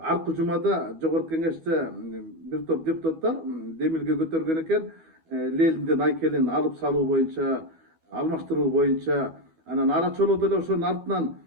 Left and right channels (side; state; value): left; late; 12 ms